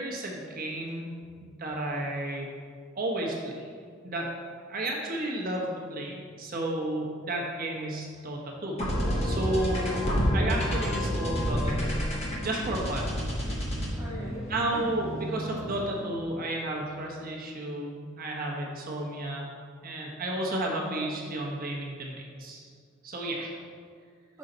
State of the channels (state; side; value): normal; both; correlation 0.55